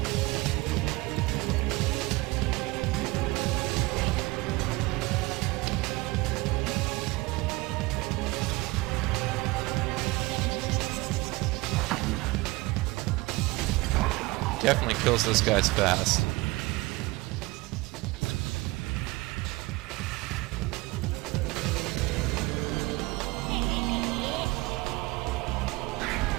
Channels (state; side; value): quieter; left; 22.3 dB